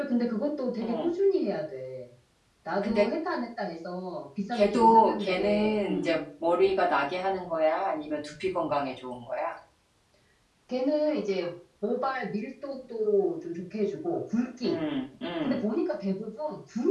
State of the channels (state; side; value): identical; both; correlation 1.00